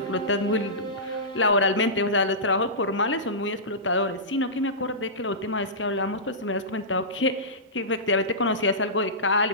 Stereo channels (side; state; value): both; normal; correlation -0.18